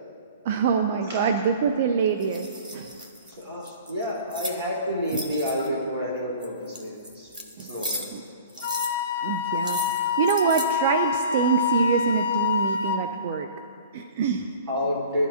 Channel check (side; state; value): both; inverted; correlation -0.43